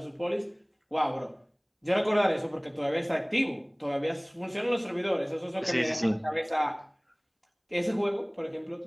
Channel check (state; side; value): identical; both; correlation 1.00